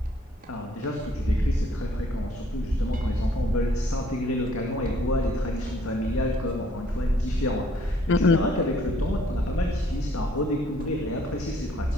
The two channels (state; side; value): normal; both; correlation 0.63